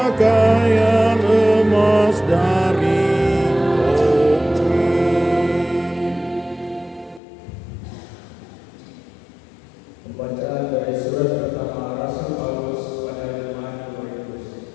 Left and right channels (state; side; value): drops out; right; at 7.2 s